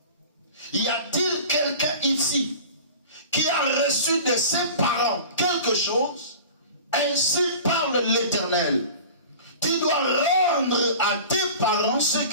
Y a-t-il quelqu'un ici qui a reçu de ses parents quelque chose? Ainsi parle l'Éternel. Tu dois rendre à tes parents ce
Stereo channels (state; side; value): inverted; both; correlation -0.39